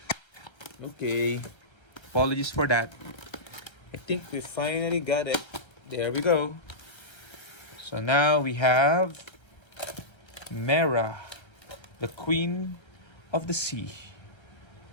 Okay, apologies for that. I think we finally got it. There we go. So now we have Mera, the queen of the sea.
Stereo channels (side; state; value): right; late; 1.3 ms